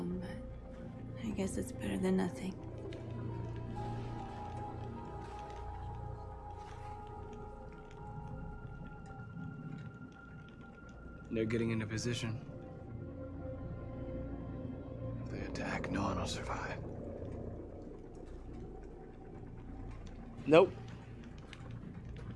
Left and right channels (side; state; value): both; identical; correlation 1.00